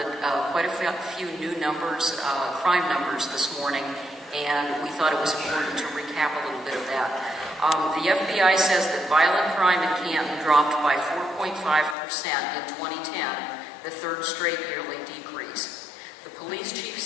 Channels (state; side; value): drops out; right; at 12.0 s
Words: quite a few new numbers, crime numbers this morning, and we thought it was important to recap a little bit of that. The FBI says that violent crime in Canton dropped by 4.5% in 2010, the third straight yearly decrease. The police chief